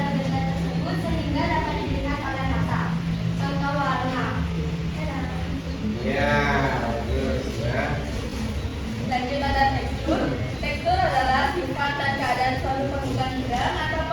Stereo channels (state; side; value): identical; both; correlation 1.00